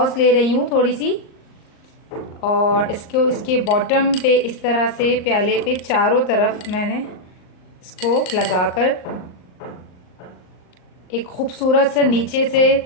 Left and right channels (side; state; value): right; late; 38 ms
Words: ले रही हूँ थोड़ी सी, और इसके बॉटम पे इस तरह से प्याले पे चारों तरफ मैंने इसको लगाकर एक खूबसूरत से नीचे से